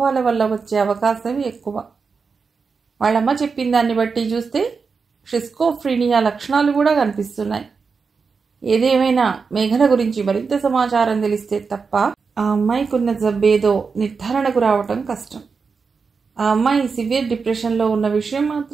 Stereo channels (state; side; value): quieter; left; 5.1 dB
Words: వల్ల వచ్చే అవకాశం ఎక్కువ. వాళ్ళమ్మ చెప్పిన దాన్ని బట్టి చూస్తే షిస్కోఫ్రీనియా లక్షణాలు కూడా కనిపిస్తున్నాయి. ఏదేమైనా మేఘన గురించి మరింత సమాచారం తెలిస్తే తప్ప ఆ అమ్మాయికున్న జబ్బేదో నిర్ధారణకు రావటం కష్టం. ఆ అమ్మాయి సివియర్ డిప్రెషన్లో ఉన్న విషయం